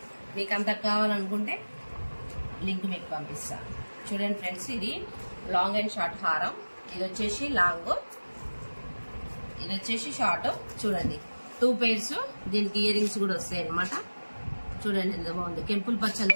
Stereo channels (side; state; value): both; inverted; correlation -1.00